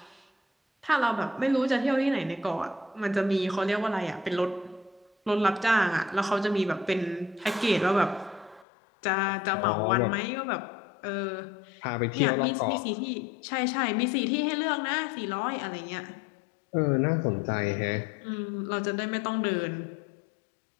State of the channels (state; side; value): drops out; right; at 8.7 s